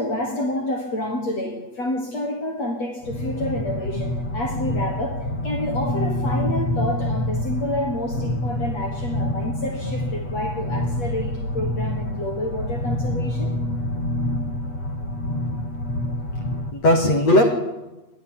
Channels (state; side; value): late; right; 8.3 ms